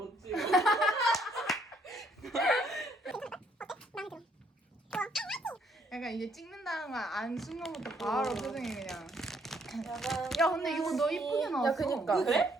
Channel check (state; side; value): normal; both; correlation 0.68